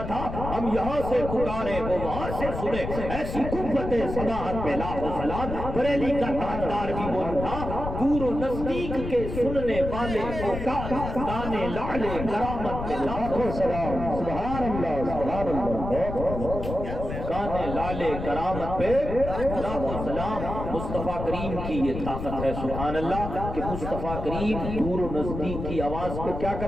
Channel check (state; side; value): noise; left; rumble, 6 dB below the sound